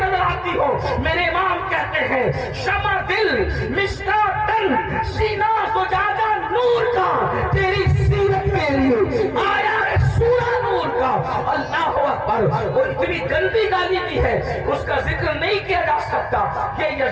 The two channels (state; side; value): identical; both; correlation 1.00